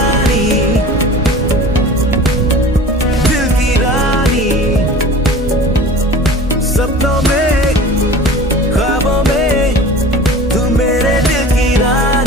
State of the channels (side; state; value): both; normal; correlation 0.40